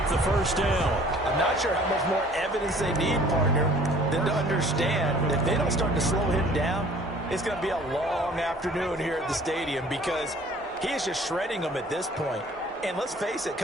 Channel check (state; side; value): normal; both; correlation 0.52